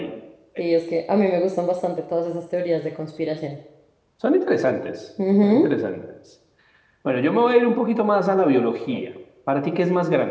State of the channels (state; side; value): identical; both; correlation 1.00